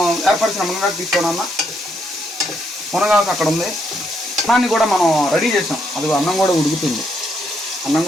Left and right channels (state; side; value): normal; both; correlation 0.76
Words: ఏర్పరిచిన మునగాకు తీసుకోనన్నా, మునగాకు అక్కడ ఉంది. అన్నాన్ని కూడా మనం రెడీ చేసాం. అది అన్నం కూడా ఉడుకుతుంది. అన్నం